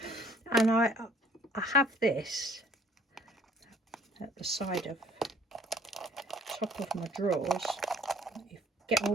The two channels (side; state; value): both; normal; correlation 0.58